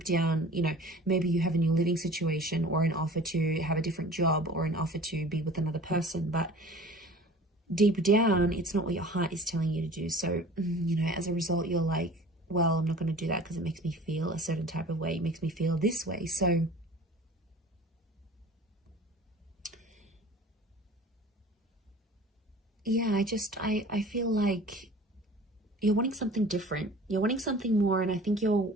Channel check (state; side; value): normal; both; correlation 0.43